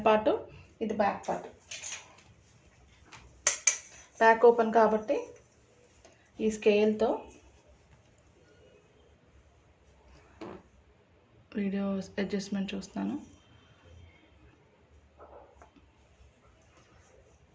పార్ట్, ఇది బ్యాక్ పార్ట్. బ్యాక్ ఓపెన్ కాబట్టి ఈ స్కేల్తో వీడియో అడ్జస్ట్మెంట్ చూస్తాను.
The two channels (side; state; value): both; identical; correlation 1.00